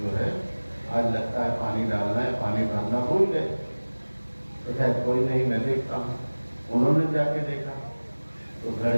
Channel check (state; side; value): inverted; both; correlation -1.00